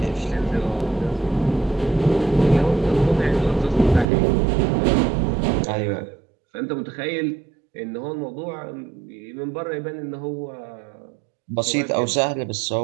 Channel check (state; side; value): drops out; left; at 4.0 s